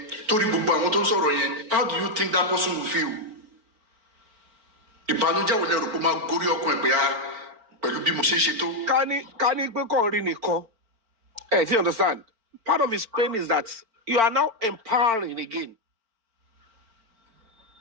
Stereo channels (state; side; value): late; left; 4.4 ms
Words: torí gbogbo àwọn tó ń sọ̀rọ̀ yẹn how do you think that person will feel? ìbànújẹ́ wo lẹ rò pé máa gorí ọkàn ẹ̀ pé pẹ̀lú bí mo ṣe ń ṣe tó. ká ní pé kàn rí nìkan ẹ ti understand part of his pain is that you are now empowering again.